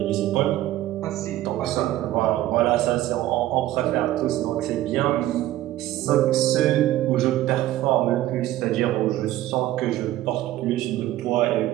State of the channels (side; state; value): left; quieter; 14.7 dB